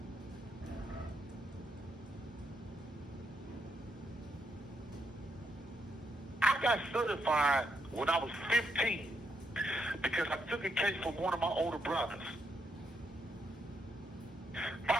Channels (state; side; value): normal; both; correlation 0.78